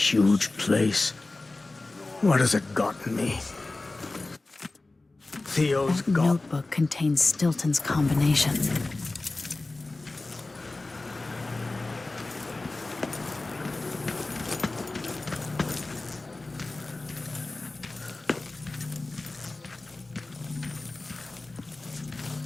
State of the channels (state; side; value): quieter; right; 3.1 dB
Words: huge place. What has it gotten me? Theo's That got... notebook contains Stilton's combination.